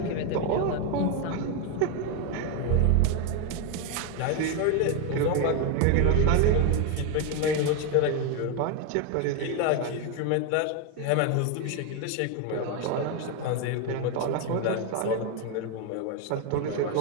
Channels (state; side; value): different; both; correlation 0.01